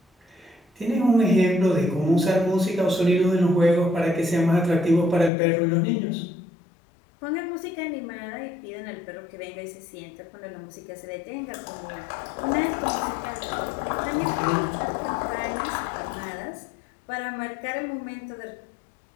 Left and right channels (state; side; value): drops out; right; at 5.3 s